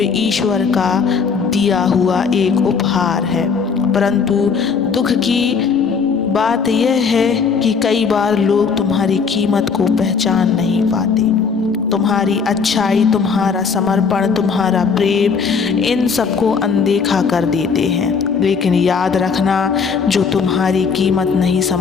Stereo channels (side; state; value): right; quieter; 5.6 dB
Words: ईश्वर का दिया हुआ एक उपहार है। परंतु दुख की बात यह है कि कई बार लोग तुम्हारी कीमत को पहचान नहीं पाते। तुम्हारी अच्छाई, तुम्हारा समर्पण, तुम्हारा प्रेम, इन सबको अनदेखा कर देते हैं। लेकिन याद रखना, जो तुम्हारी कीमत नहीं